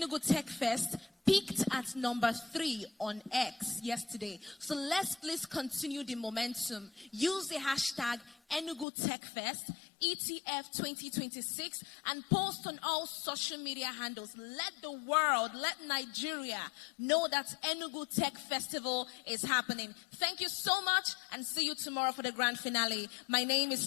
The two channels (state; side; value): drops out; right; at 8.8 s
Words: Tech Fest peaked at number 3 on X yesterday. So let's please continue the momentum. Use the hashtag Enugu Tech Fest, ETF 2026, and post on all social media handles. Let the world, let Nigeria know that Enugu Tech Festival is happening. Thank you so much, and see you tomorrow for the grand finale. My name is